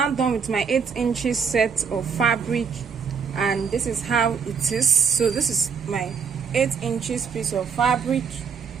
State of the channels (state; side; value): quieter; left; 6.2 dB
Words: done with my 8 inches set of fabric, and this is how it is. So this is my 8 inches piece of fabric.